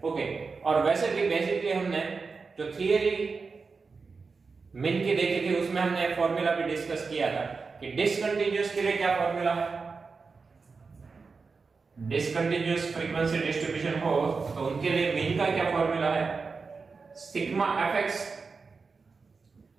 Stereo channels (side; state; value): left; quieter; 4.6 dB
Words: ओके, और वैसे भी बेसिकली हमने जो थियरी मिन की देखी थी उसमें हमने फॉर्मूला भी डिस्कस किया था कि डिसकंटिन्यूअस के लिए क्या फॉर्मूला है. डिसकंटिन्यूअस फ्रीक्वेंसी डिस्ट्रीब्यूशन हो तो उनके लिए मीन का क्या फॉर्मूला है, sigma fx